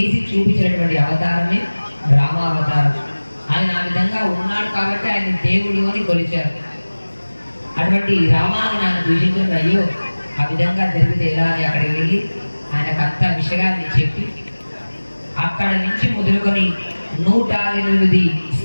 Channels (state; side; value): inverted; both; correlation -1.00